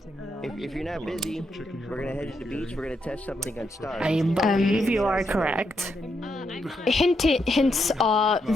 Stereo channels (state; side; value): normal; both; correlation 0.81